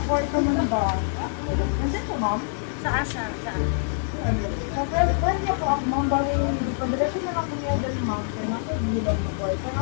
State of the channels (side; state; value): right; silent; digital silence